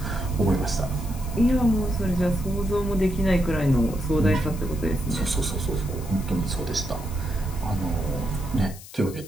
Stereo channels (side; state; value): left; noise; hiss, 17 dB below the sound